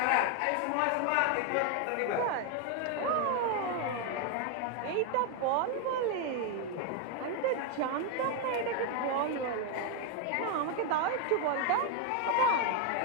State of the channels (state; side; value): different; both; correlation 0.01